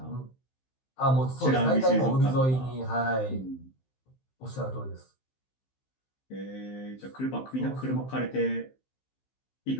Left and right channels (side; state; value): right; late; 15 ms